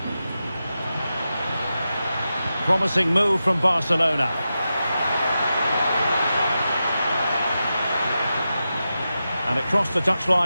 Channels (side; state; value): both; inverted; correlation -0.91